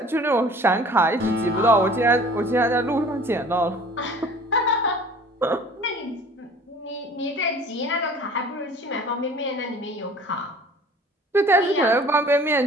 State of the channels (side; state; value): both; normal; correlation 0.48